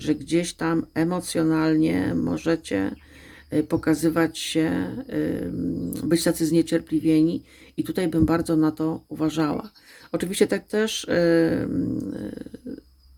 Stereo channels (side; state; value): both; identical; correlation 1.00